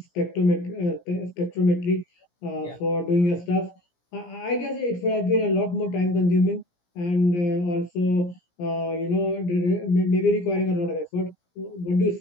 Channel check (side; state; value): right; late; 17 ms